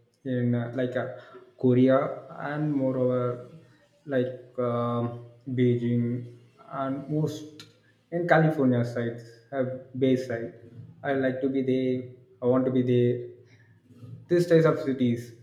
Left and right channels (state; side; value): identical; both; correlation 1.00